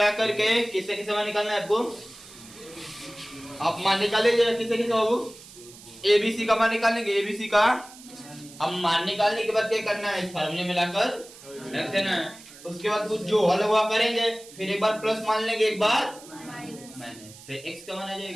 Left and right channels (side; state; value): right; noise; hiss, 19 dB below the sound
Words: करके किससे किससे मान निकालना है आपको, आप मान निकालेंगे किसे किसे बाबू, एबीसी का मान निकालेंगे, एबीसी का, अब मान निकालने के बाद क्या करना है, इस फार्मूले में लाकर रख देना है, उसके बाद कुछ जो हल हुआ करेंगे, फिर एक बार प्लस मान लेंगे, एक बार माइनस, फिर x का मान आ